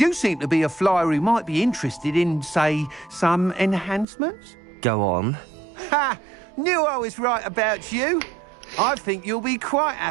seem to be a flyer who might be interested in, say, some enhancements? Go on. Ha! Knew I was right about you. I think you'll be quite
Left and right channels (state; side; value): drops out; left; at 4.0 s